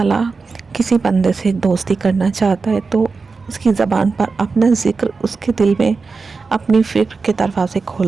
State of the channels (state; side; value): quieter; left; 4.5 dB